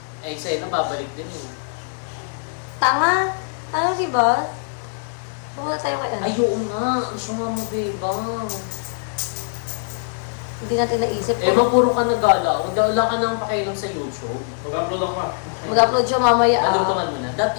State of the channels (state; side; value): silent; right; digital silence